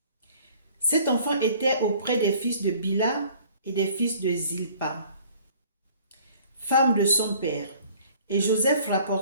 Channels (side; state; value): both; inverted; correlation -0.53